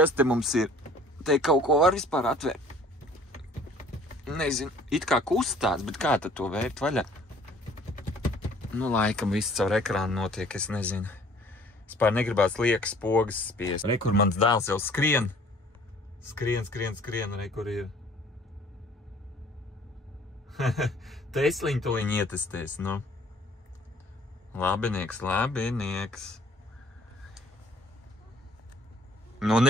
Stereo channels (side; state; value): both; normal; correlation 0.54